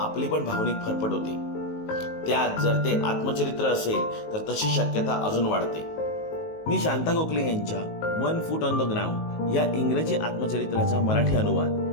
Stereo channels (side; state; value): right; late; 19 ms